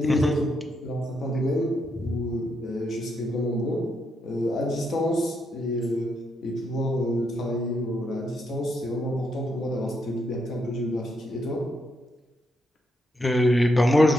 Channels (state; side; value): normal; both; correlation 0.79